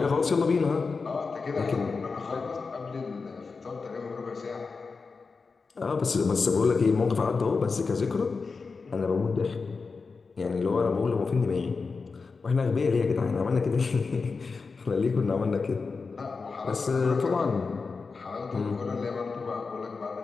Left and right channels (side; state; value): right; quieter; 4.6 dB